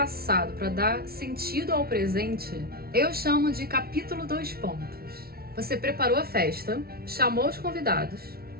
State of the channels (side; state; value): left; late; 0.44 ms